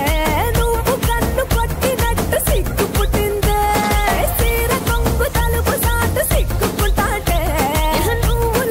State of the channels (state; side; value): identical; both; correlation 1.00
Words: నువ్వు కన్ను కొట్టినట్టు సిగ్గు పుట్టిందే సీర కొంగు తలుపు సాటు సిగ్గుకుంటాంటే నువ్వు